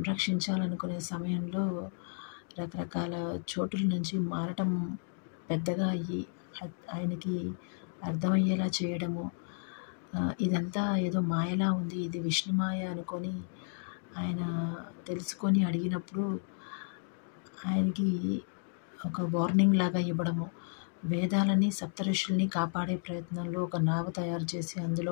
సమయంలో రకరకాల చోటుల నుంచి మారటం పెద్దగా అయ్యి ఆయనకి అర్థమయ్యేలా చేయడము, ఇదంతా ఏదో మాయలా ఉంది, ఇది విష్ణుమాయ అనుకొని ఆయన తెలుసుకొని అడిగినప్పుడు ఆయనకి ఒక వార్నింగ్ లాగా ఇవ్వడము, వేదాలని సప్తఋషుల్ని కాపాడే ప్రయత్నంలో ఒక నావ తయారు చేసి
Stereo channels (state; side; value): silent; right; 56 dB below the other